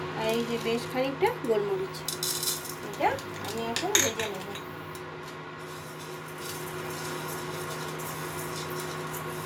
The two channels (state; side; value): identical; both; correlation 1.00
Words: আর এই যে বেশ খানিকটা গোলমরিচ, এটা আমি এখন ভেজে নেব।